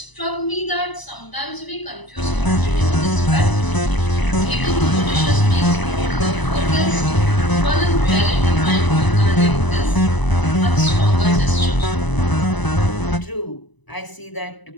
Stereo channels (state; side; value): late; right; 1.0 ms